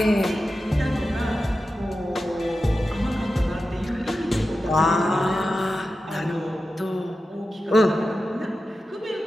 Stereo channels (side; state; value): both; normal; correlation 0.92